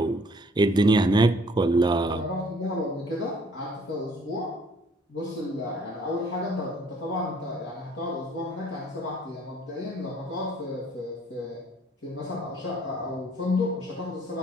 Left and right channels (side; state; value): both; normal; correlation 0.59